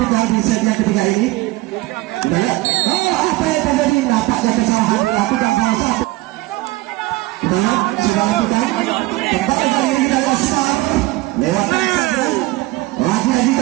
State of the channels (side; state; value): left; quieter; 19.2 dB